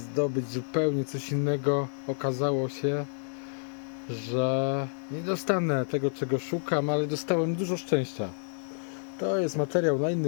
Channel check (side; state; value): right; silent; digital silence